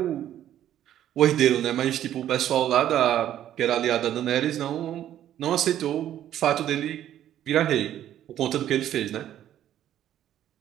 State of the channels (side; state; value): left; quieter; 11.5 dB